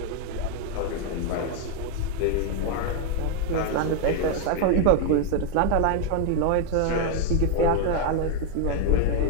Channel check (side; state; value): both; different; correlation 0.00